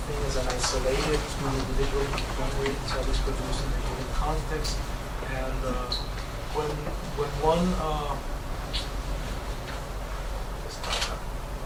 thing as an isolated individual memory. It's always produced in a given context. And when one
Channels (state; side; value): identical; both; correlation 1.00